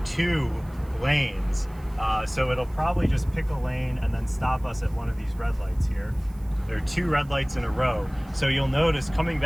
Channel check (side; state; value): right; noise; hiss, 28 dB below the sound